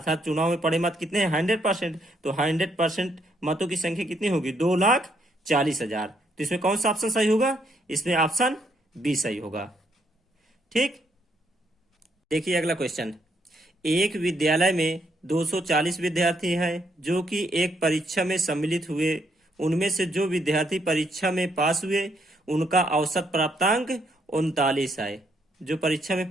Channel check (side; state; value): both; normal; correlation 0.74